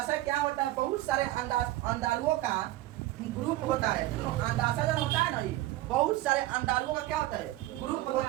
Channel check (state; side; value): quieter; left; 16.4 dB